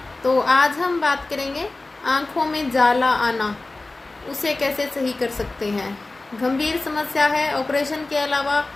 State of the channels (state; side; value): quieter; right; 3.2 dB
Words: तो आज हम बात करेंगे आँखों में जाला आना, उसे कैसे सही कर सकते हैं। गंभीर समस्या है। ऑपरेशन के अलावा